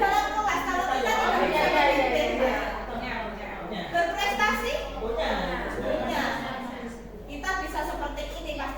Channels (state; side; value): identical; both; correlation 1.00